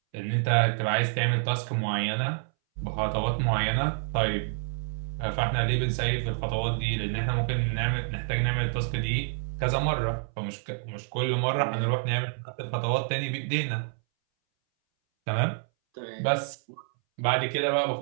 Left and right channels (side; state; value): left; silent; 59 dB below the other